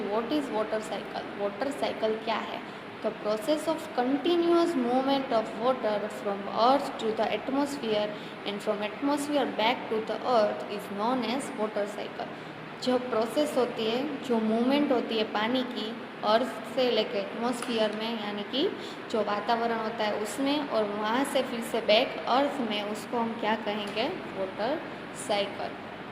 what is water cycle? Water cycle क्या है? The process of continuous movement of water from earth to the atmosphere and from atmosphere back to the earth is known as water cycle. जो प्रोसेस होती है, जो मूवमेंट होती है पानी की अर्थ से लेकर एटमॉस्फेयर में, यानी कि जो वातावरण होता है उसमें, और वहाँ से फिर से बैक अर्थ में, उसको हम क्या कहेंगे? Water cycle.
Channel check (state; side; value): identical; both; correlation 1.00